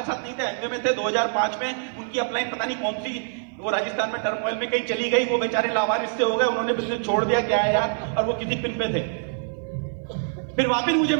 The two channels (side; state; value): left; silent; 56 dB below the other